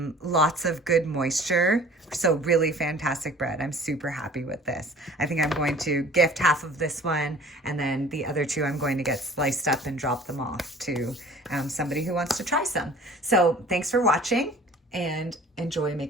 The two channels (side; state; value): both; normal; correlation 0.47